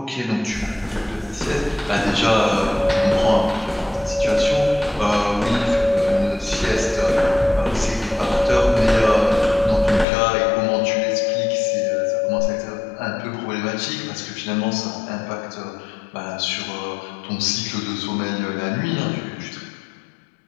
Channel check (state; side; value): drops out; right; at 10.1 s